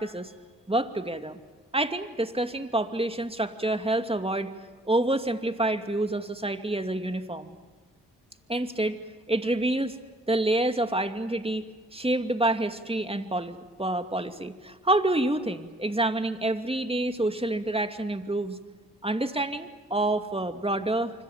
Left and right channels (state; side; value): normal; both; correlation 0.58